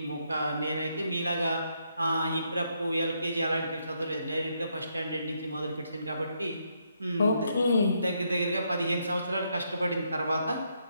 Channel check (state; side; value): inverted; both; correlation -0.77